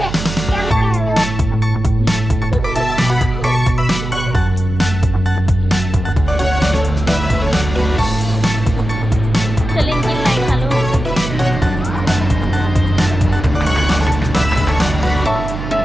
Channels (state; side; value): noise; right; hum, 6 dB below the sound